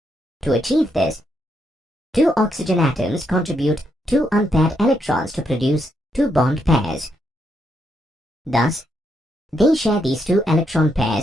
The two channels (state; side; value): normal; both; correlation 0.78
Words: To achieve this, 2 oxygen atoms contribute 2 unpaired electrons to produce 2 bond pairs. Thus, they share these 2 electron